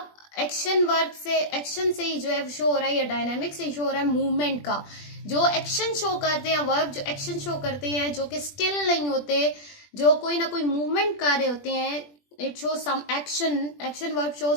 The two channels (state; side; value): late; right; 20 ms